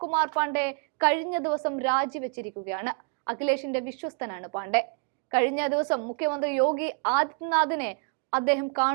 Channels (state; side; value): quieter; left; 36.8 dB